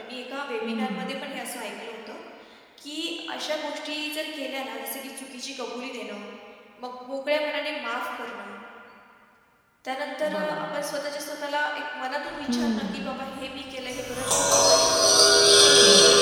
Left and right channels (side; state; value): both; identical; correlation 1.00